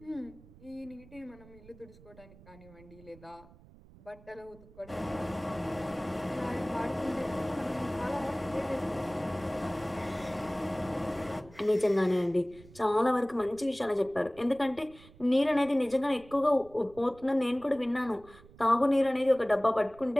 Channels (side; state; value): right; noise; rumble, 23 dB below the sound